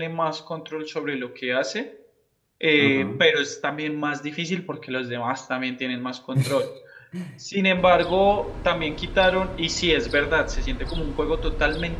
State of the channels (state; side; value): identical; both; correlation 1.00